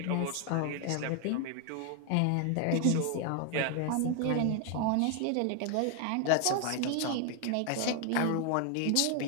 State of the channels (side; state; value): both; different; correlation 0.00